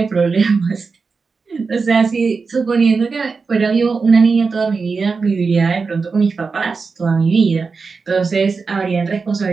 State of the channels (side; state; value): left; quieter; 4.7 dB